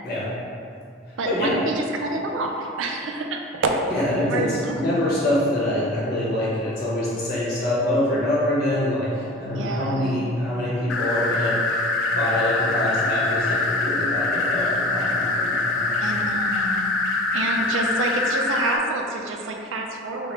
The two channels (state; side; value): normal; both; correlation 0.37